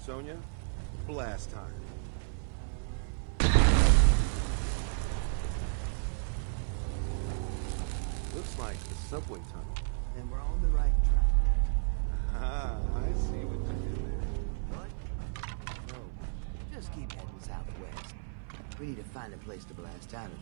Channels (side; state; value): left; silent; 56 dB below the other